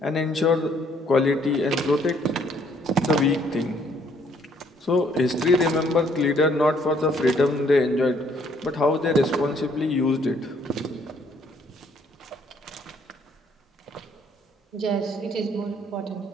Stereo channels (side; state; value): both; normal; correlation 0.65